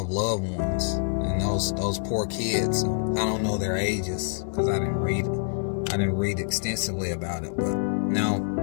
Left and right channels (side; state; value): right; silent; digital silence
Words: loved ones and those poor kids. I don't know their ages because I didn't read extensively about it, but now